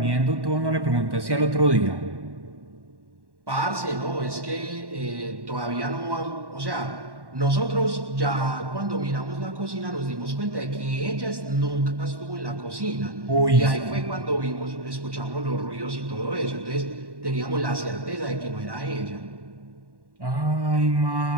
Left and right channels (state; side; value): late; left; 1.1 ms